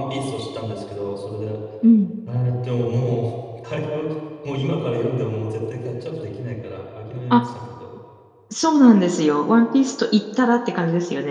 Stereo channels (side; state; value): both; identical; correlation 1.00